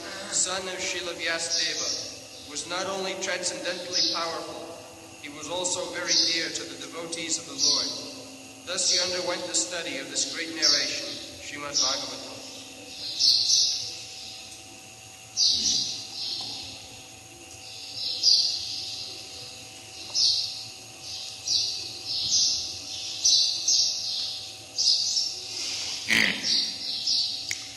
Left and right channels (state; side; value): identical; both; correlation 1.00